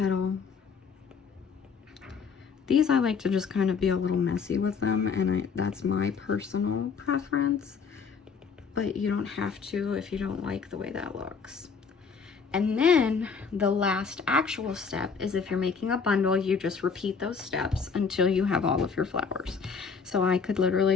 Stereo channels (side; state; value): right; quieter; 5.7 dB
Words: These I like to just kind of be a little messy with them, and that's my personal preference, but you don't have to if you don't like the way that looks. And then the last actual step is if you're making a bundle, you just repeat those steps until you have all of your flowers. So I could